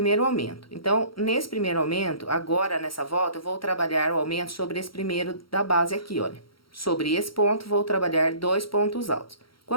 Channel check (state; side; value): late; right; 0.74 ms